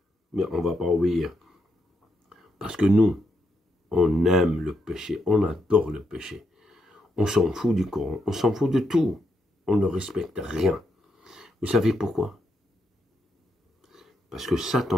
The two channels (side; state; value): both; normal; correlation 0.80